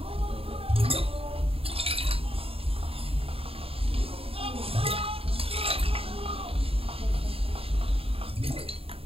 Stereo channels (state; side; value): late; left; 0.27 ms